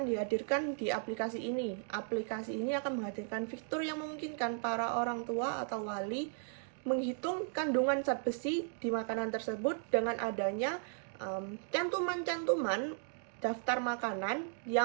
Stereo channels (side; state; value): left; silent; 54 dB below the other